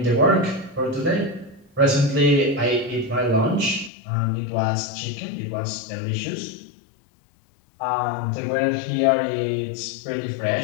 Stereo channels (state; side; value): drops out; right; at 3.9 s